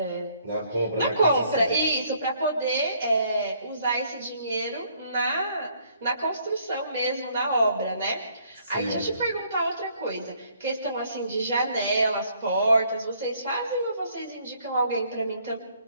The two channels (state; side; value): inverted; both; correlation -0.65